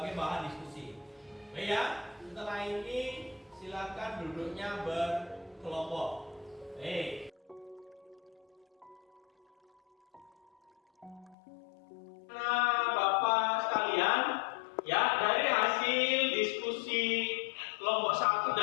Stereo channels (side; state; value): right; drops out; at 11.4 s